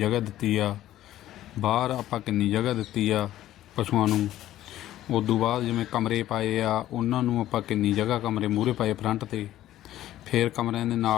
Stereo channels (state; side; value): quieter; right; 13.6 dB